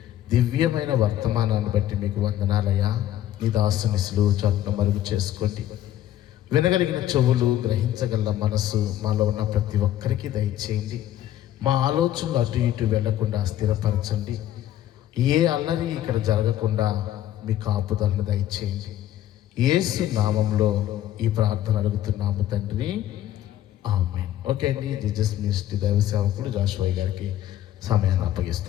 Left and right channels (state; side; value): quieter; right; 12.5 dB